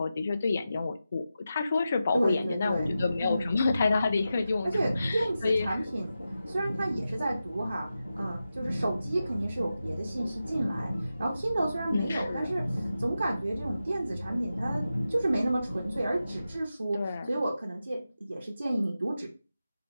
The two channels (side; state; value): both; inverted; correlation -0.91